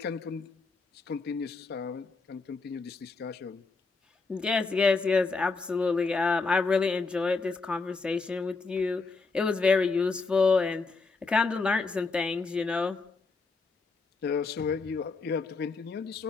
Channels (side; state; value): right; quieter; 4.2 dB